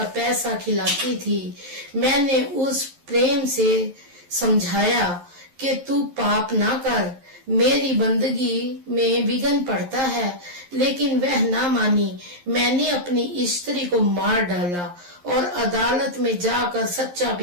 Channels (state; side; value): late; left; 11 ms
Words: पैसा खिलाती थी। मैंने उस प्रेम से समझाया कि तू पाप ना कर, मेरी बंदगी में विघ्न पड़ता है, लेकिन वह ना मानी। मैंने अपनी स्त्री को मार डाला और अदालत में जाकर सच्चा